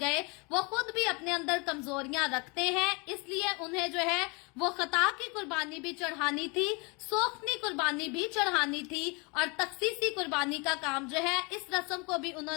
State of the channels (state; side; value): quieter; right; 29.8 dB